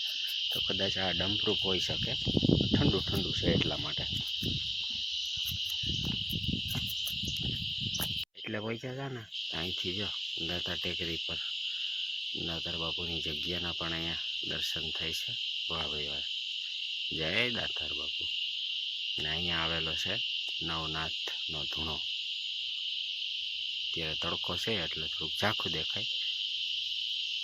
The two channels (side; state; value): both; identical; correlation 1.00